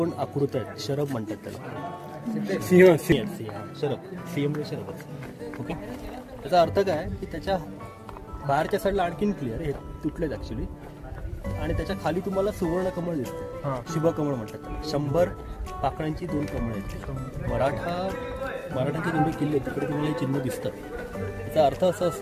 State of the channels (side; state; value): both; identical; correlation 1.00